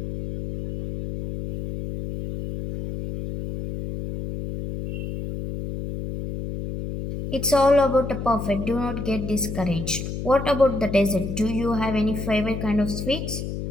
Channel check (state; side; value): noise; left; hum, 6 dB below the sound